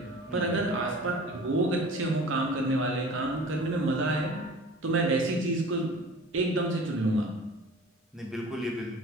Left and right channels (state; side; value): normal; both; correlation 0.42